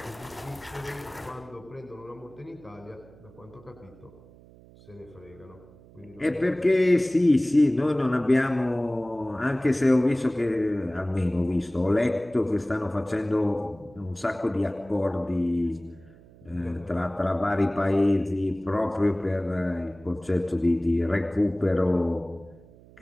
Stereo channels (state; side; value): noise; right; hum, 23 dB below the sound